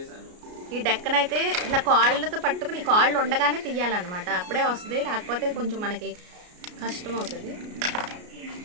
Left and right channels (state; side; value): late; left; 33 ms